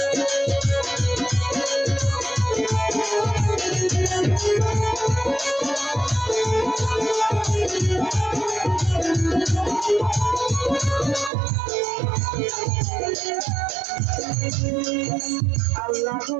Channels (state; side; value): drops out; left; at 11.3 s